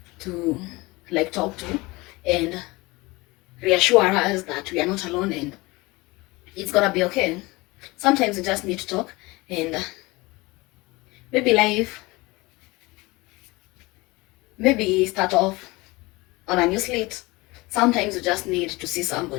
to like talk to and reassure us that we are not alone and it's gonna be okay. Sometimes we just need to talk, and maybe start off on a new slate. Sometimes you just need to see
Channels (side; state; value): right; quieter; 22.7 dB